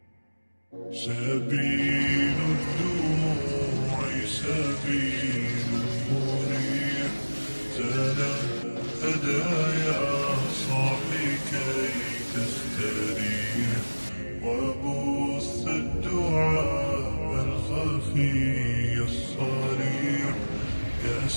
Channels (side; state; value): both; inverted; correlation -1.00